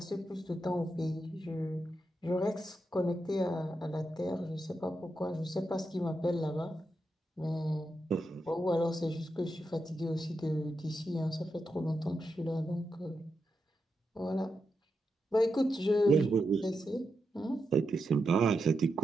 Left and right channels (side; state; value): both; normal; correlation 0.86